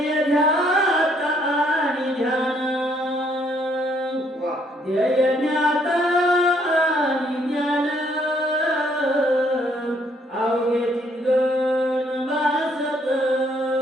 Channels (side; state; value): both; normal; correlation 0.68